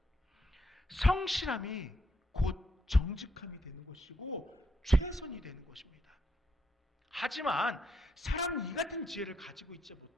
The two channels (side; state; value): both; normal; correlation 0.77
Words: 성실함이 곧 정직함이 되는 것이고 최선이 되는 것입니다. 하지만 사람은 이 같은 지혜를 가지고 있지